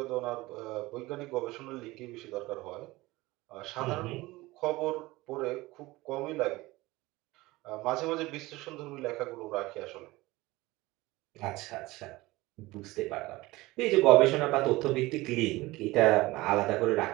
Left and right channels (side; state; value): left; quieter; 20.0 dB